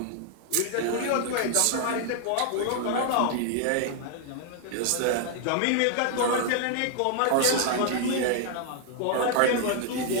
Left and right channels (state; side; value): different; both; correlation 0.00